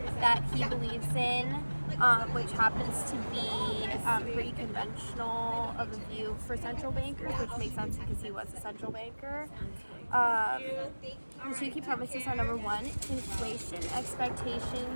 that he believes in, which happens to be pretty conventional of a view for central bankers, which makes sense because he was a central banker. The two key premises are: number one, inflation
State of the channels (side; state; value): both; inverted; correlation -1.00